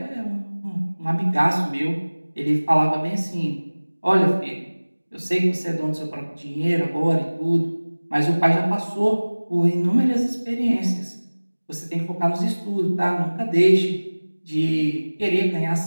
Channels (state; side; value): inverted; both; correlation -1.00